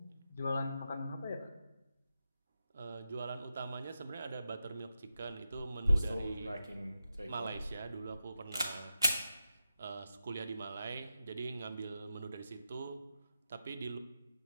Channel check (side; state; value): both; inverted; correlation -0.88